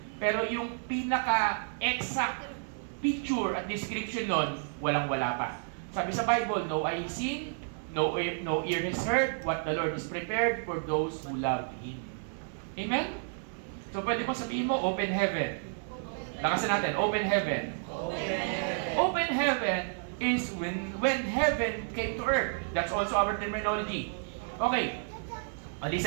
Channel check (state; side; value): silent; left; digital silence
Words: pero yung pinaka-exact picture at description nun, walang-wala pa. Sabi sa Bible, no eye has seen, no ear has heard, what the Lord is prepared for those who love Him. Amen? So pwede mo sabihin mo, open heaven. Lakasan natin, open heaven. Open heaven is when heaven came to earth. That's also our terminology. Okay.